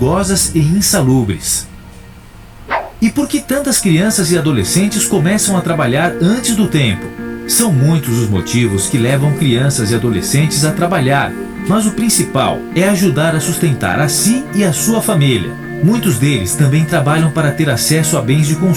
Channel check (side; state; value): both; identical; correlation 1.00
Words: e insalubres. E por que tantas crianças e adolescentes começam a trabalhar antes do tempo? São muitos os motivos que levam crianças e adolescentes a trabalhar, mas o principal é ajudar a sustentar a si e a sua família. Muitos deles também trabalham para ter acesso a bens de